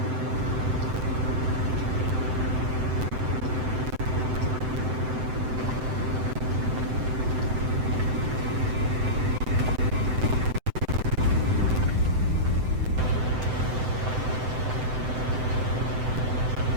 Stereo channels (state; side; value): late; left; 7.8 ms